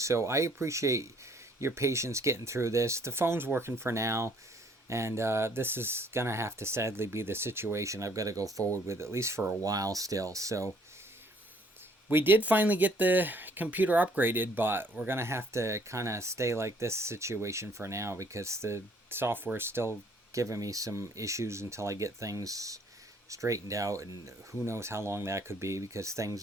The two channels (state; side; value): normal; both; correlation 0.61